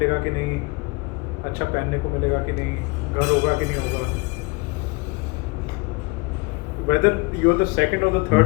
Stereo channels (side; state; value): right; quieter; 27.5 dB